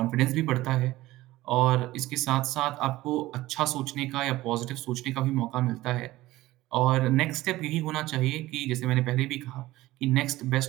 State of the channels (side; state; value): left; quieter; 17.3 dB